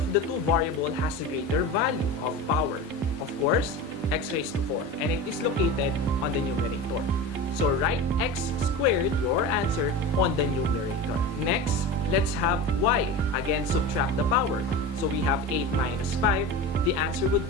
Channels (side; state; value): both; normal; correlation 0.29